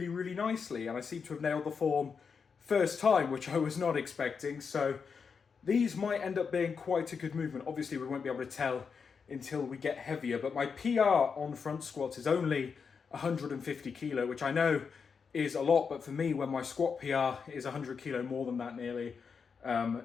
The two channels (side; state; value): right; quieter; 5.8 dB